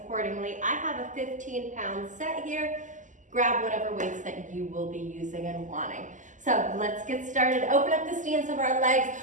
I have a 15-pound set here. Grab whatever weights that you will be using and wanting. So let's get started. Open up the stance of our legs.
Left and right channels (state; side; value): late; left; 0.37 ms